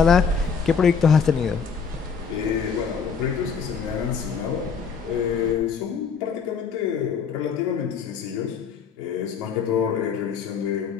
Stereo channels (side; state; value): right; quieter; 6.1 dB